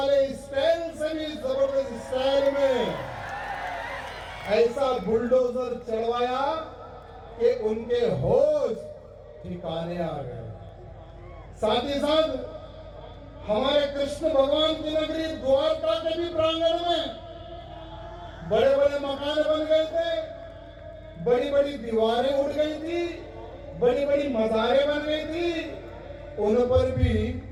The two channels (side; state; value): both; identical; correlation 1.00